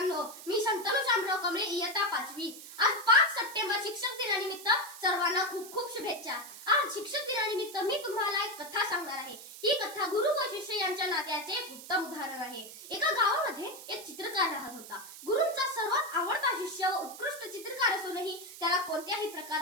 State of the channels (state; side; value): noise; right; hiss, 14 dB below the sound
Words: मी शंतनू शामराव कमळे, इयत्ता 5वी। आज 5 सप्टेंबर शिक्षक दिनानिमित्त सर्वांना खूप खूप शुभेच्छा। आज शिक्षक दिनानिमित्त मी तुम्हाला एक कथा सांगणार आहे। ही कथा गुरु व शिष्य यांच्या नात्याचे एक उत्तम उदाहरण आहे। एका गावामध्ये एक चित्रकार राहत होता। गुरूंचा सर्वात आवडता शिष्य व उत्कृष्ट चित्रकार असूनही त्याला कोणत्याही